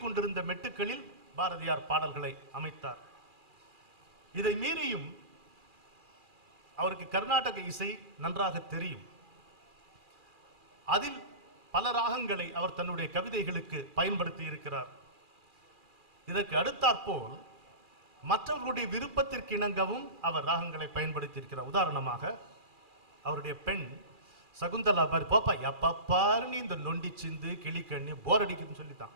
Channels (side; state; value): left; late; 2.4 ms